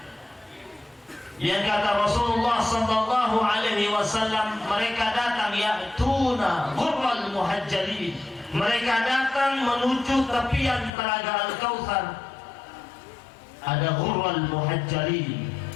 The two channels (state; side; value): drops out; right; at 10.9 s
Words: Yang kata Rasulullah Sallallahu Alaihi Wasallam, mereka datang ya'tuna ghurral muhajjalin. Mereka datang menuju tepian telaga Al-Kautsar. Ada ghurral muhajjalin.